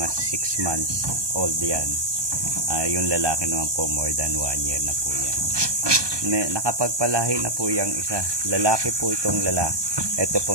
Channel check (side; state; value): left; late; 1.2 ms